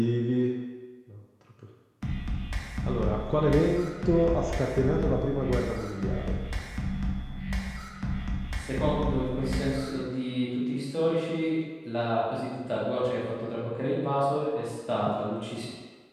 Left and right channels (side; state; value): both; identical; correlation 1.00